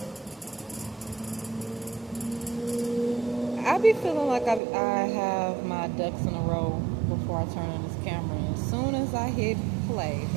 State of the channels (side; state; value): left; drops out; at 4.6 s